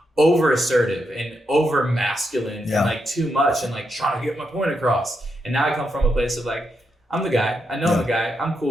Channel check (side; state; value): both; normal; correlation 0.83